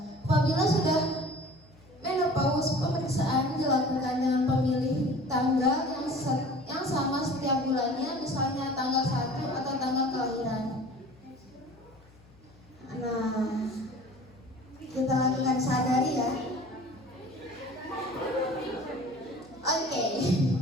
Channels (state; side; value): noise; left; hum, 26 dB below the sound